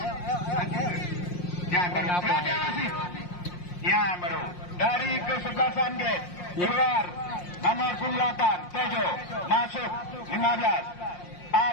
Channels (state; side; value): late; right; 5.6 ms